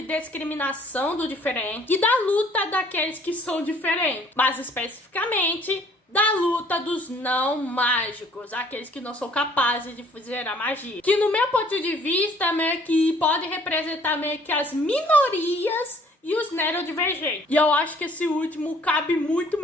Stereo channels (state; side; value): normal; both; correlation 0.58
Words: discriminação do diferente e da luta daqueles que são diferentes. Mais especificamente, da luta dos não mágicos, aqueles que não são capazes de fazer a magia. Que no meu ponto de vista, meio que pode representar meio que as minorias e os neurodivergentes. E eu acho que esse último cabe muito